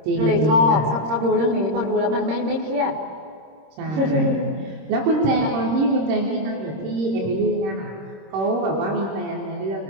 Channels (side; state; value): left; late; 26 ms